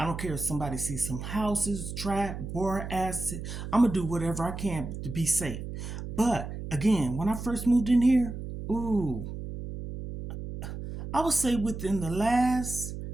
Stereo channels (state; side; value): noise; right; hum, 8 dB below the sound